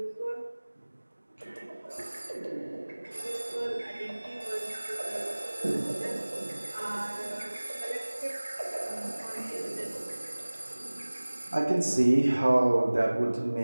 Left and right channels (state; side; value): inverted; both; correlation -1.00